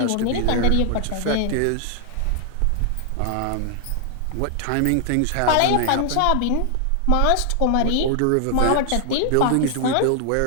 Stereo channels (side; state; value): both; different; correlation 0.00